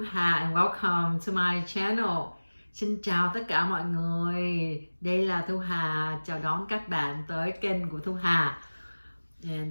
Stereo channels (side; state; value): both; inverted; correlation -1.00